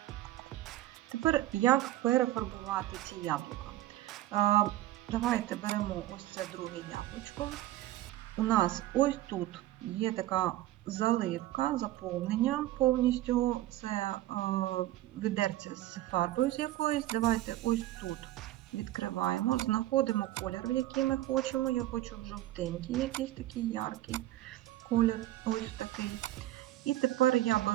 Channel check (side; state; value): left; quieter; 15.2 dB